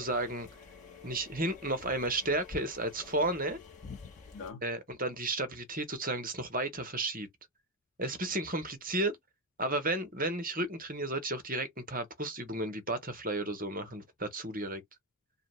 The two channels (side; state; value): both; normal; correlation 0.05